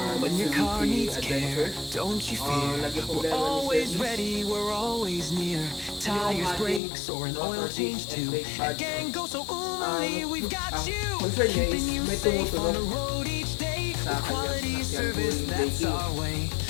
When your car needs care, don't you fear. We're always ready, we're always near. Tires, brakes, or an oil change too. At Gang Go So Umali, we've got you. Keeping you safe on the road each day. With quality service, that's our way.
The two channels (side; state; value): right; drops out; at 6.8 s